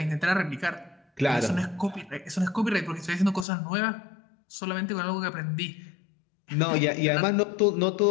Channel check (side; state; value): right; drops out; at 3.5 s